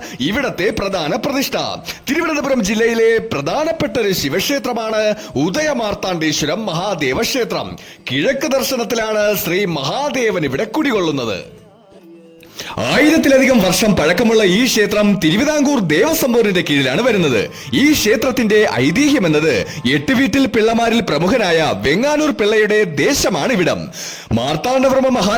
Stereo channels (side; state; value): both; identical; correlation 1.00